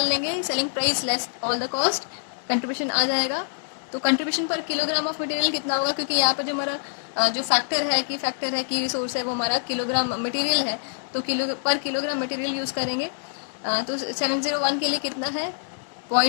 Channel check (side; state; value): right; silent; digital silence